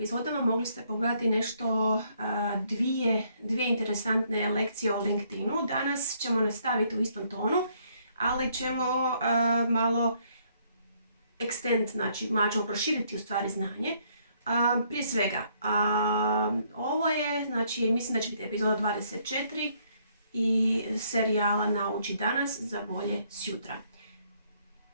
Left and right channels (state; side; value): inverted; both; correlation -0.68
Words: mogli ste pogledati nešto, dvije interesantne lekcije o LinkedInu. Danas ćemo nastaviti u istom tonu, ali ćemo malo malo ćemo proširiti u stvari znanje. Prije svega, ovo je, mislim da će biti epizoda 24 i serijala Nauči danas za bolje sutra.